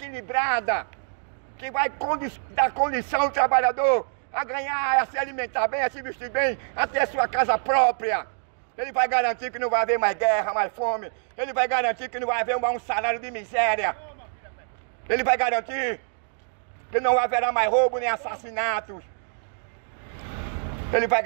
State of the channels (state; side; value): silent; left; digital silence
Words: que vai dar condição ao trabalhador a ganhar, a se alimentar bem, a se vestir bem, a ter sua casa própria. Ele vai garantir que não vai haver mais guerra, mais fome. Ele vai garantir que não vai haver um salário de miséria. Ele vai garantir que não haverá mais roubo nem assassinatos. Ele vai